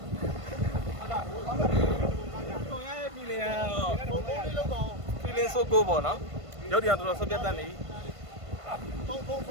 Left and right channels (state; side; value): late; left; 1.5 ms